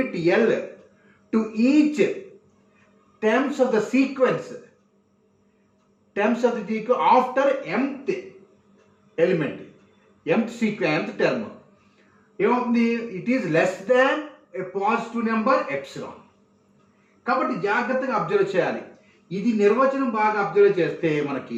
L to each terms of the sequence after mth element, mth term ఏమవుతుంది? It is less than A positive number epsilon. కాబట్టి జాగ్రత్తగా అబ్జర్వ్ చేయాలి. ఇది నిర్వచనం బాగా అబ్జర్వ్ చేస్తే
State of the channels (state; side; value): identical; both; correlation 1.00